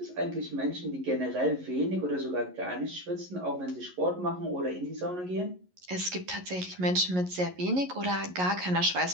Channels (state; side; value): late; left; 11 ms